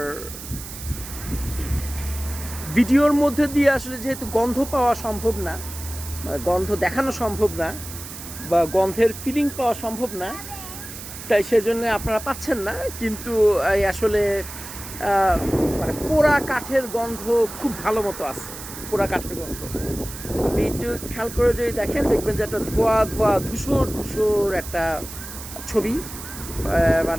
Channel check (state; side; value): noise; right; hiss, 12 dB below the sound